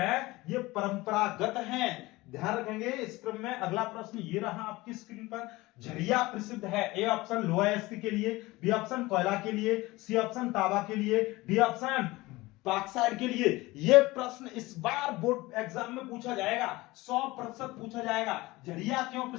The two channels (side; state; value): right; quieter; 20.4 dB